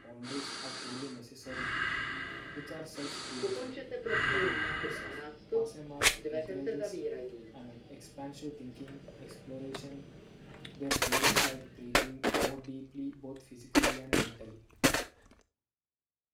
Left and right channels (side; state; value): both; identical; correlation 1.00